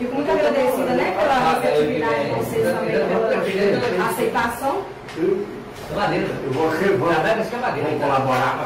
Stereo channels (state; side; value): identical; both; correlation 1.00